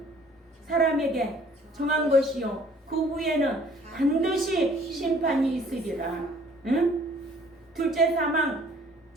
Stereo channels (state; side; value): normal; both; correlation 0.56